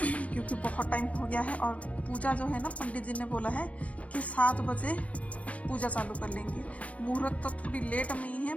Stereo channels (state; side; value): late; right; 0.065 ms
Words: क्योंकि बहुत टाइम हो गया है। और पूजा जो है ना, पंडित जी ने बोला है कि 7 बजे पूजा चालू कर लेंगे। मुहूर्त तो थोड़ी लेट में ही है,